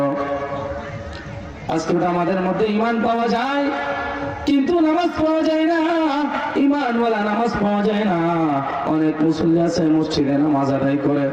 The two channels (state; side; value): identical; both; correlation 1.00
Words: আজকে আমাদের মধ্যে ঈমান পাওয়া যায় কিন্তু নামাজ পাওয়া যায় না, ঈমানওয়ালা নামাজ পাওয়া যায় না। অনেক মুসল্লি আছে মসজিদে নামাজ আদায় করে